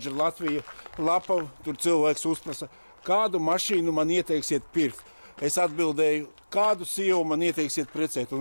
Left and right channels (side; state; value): both; inverted; correlation -1.00